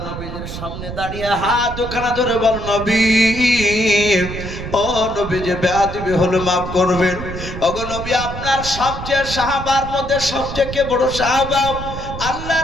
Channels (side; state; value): right; noise; rumble, 8 dB below the sound